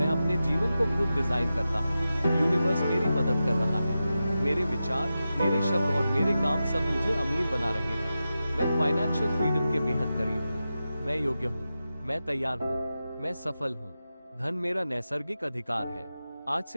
अपने जीवन को खुद डिजाइन करता हूँ। यूनिवर्स मेरी मदद कर रहा है। मेरे विचार, मेरे शब्द और मेरे काम सब मुझे अमीर बना रहे हैं। मैं फाइनेंशियल फ्रीडम के बेहद करीब हूँ। मैं योग्य हूँ। मैं तैयार हूँ। मैं सफल हूँ। धन मेरा नैसर्गिक अधिकार है। आज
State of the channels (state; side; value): inverted; both; correlation -0.92